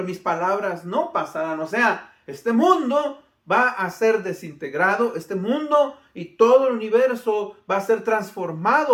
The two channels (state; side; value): identical; both; correlation 1.00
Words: mis palabras no pasarán. O sea, este mundo va a ser desintegrado, este mundo y todo el universo va a ser